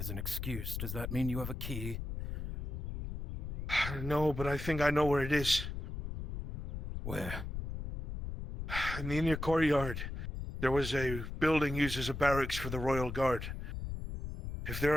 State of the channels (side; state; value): left; noise; rumble, 5 dB below the sound